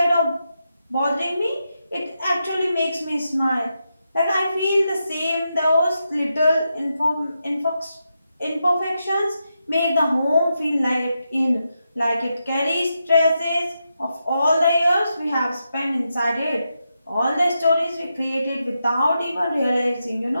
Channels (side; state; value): both; inverted; correlation -0.86